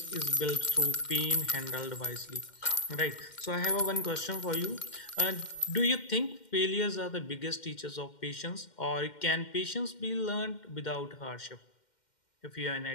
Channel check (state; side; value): late; right; 2.1 ms